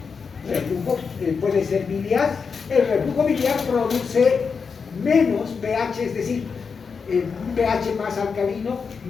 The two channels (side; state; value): right; quieter; 5.5 dB